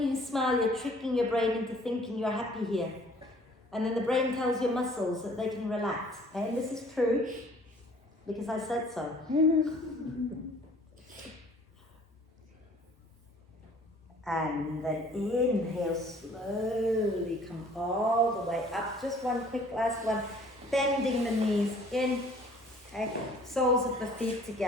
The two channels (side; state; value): both; normal; correlation 0.54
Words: you smile, you're tricking your brain into thinking you're happy here. And then the brain tells your muscles that they can relax. Okay? And this is true, because I said so. And then inhale, slowly come all the way up. Just one quick last one. Bending the knees in. Okay? Soles of the feet